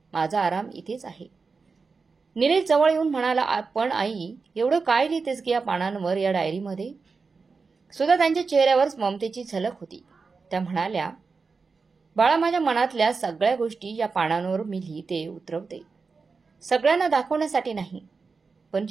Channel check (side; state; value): left; quieter; 4.6 dB